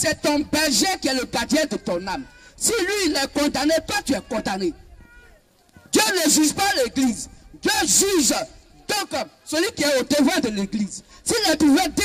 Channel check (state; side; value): identical; both; correlation 1.00